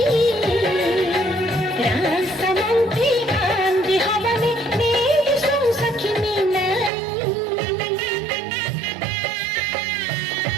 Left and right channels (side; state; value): left; drops out; at 6.9 s